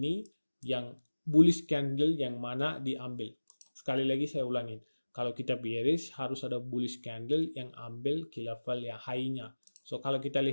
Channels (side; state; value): both; inverted; correlation -1.00